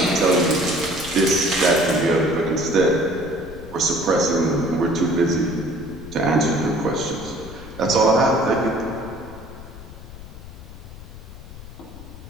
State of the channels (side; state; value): left; noise; rumble, 15 dB below the sound